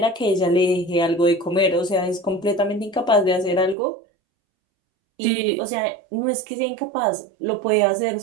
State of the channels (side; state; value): left; drops out; at 3.8 s